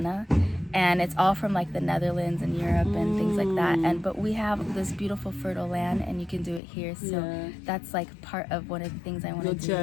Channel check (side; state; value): right; drops out; at 6.6 s